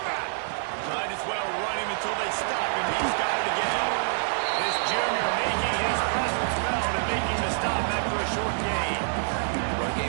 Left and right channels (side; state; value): left; silent; digital silence